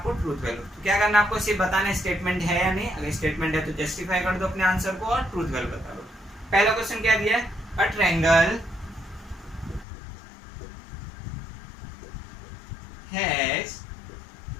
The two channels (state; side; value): drops out; right; at 9.9 s